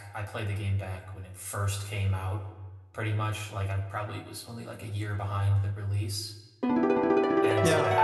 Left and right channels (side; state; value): both; identical; correlation 1.00